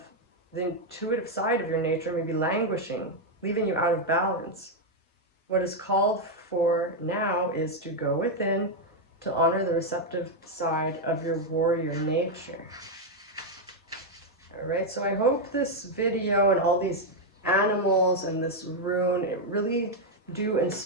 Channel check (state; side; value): normal; both; correlation 0.01